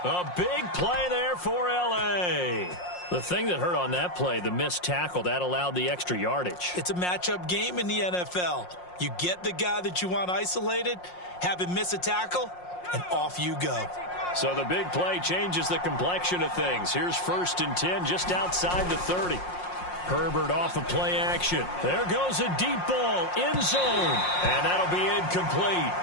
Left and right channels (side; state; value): right; late; 5.6 ms